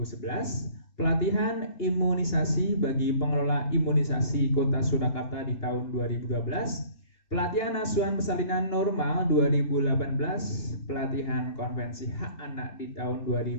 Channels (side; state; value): right; late; 2.9 ms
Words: Pelatihan imunisasi bagi pengelola imunisasi Kota Surakarta di tahun 2012. Pelatihan asuhan persalinan normal 2018, pelatihan konvensi hak anak di tahun